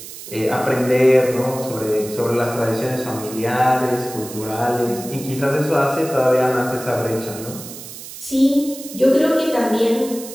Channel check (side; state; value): right; noise; hiss, 13 dB below the sound